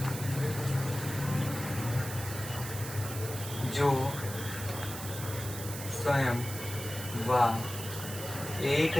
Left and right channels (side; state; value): right; noise; hiss, 9 dB below the sound